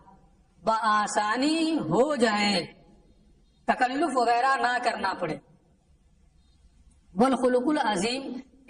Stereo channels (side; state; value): both; identical; correlation 1.00